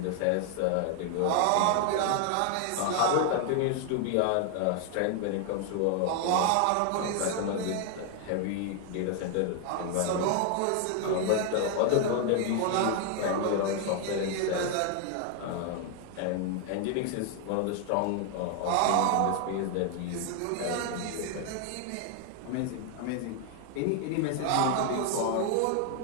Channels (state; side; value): different; both; correlation 0.00